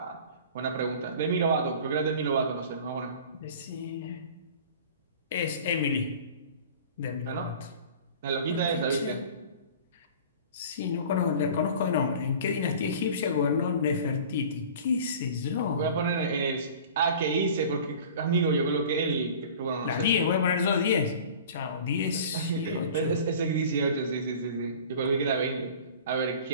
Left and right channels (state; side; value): inverted; both; correlation -0.42